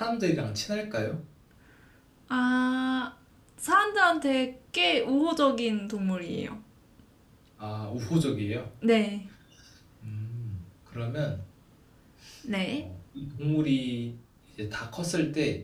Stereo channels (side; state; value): both; identical; correlation 1.00